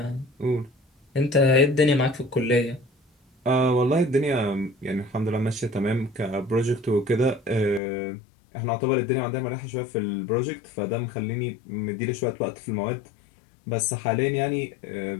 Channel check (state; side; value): drops out; right; at 7.8 s